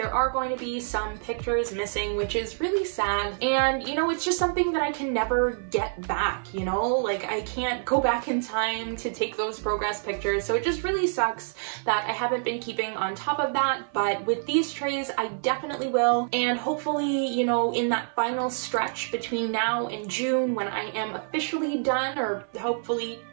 are going to be some pictures missing, which is really sad. And, you know, it's just something that I can never get back, you know? Like, I can't go back in time to take those progress pictures, so it just really sucks that I haven't been keeping on top of that. But with these trays, I definitely will, and hopefully, you know, in that final stretch between now and June, when I am officially done, or hopefully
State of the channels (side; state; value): left; silent; 55 dB below the other